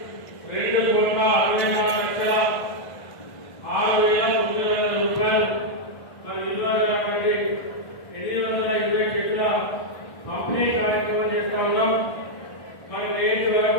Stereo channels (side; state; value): right; late; 2.0 ms